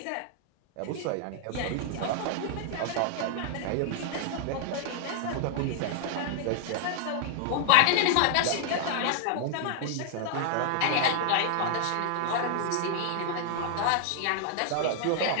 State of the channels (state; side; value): different; both; correlation 0.00